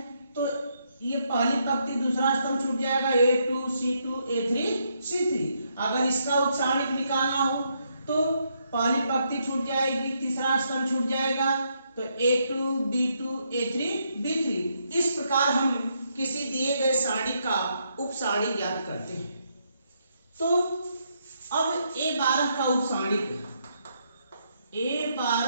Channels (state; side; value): inverted; both; correlation -0.76